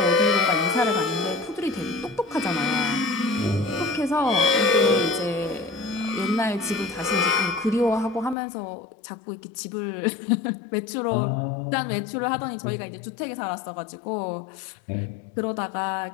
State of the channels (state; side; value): drops out; right; at 8.3 s